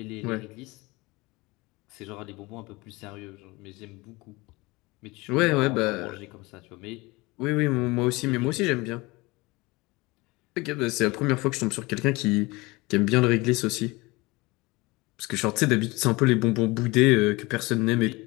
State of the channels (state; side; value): quieter; right; 23.3 dB